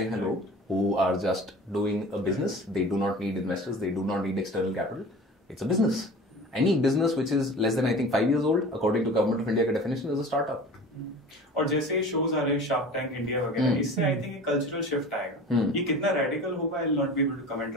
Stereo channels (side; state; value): both; normal; correlation 0.39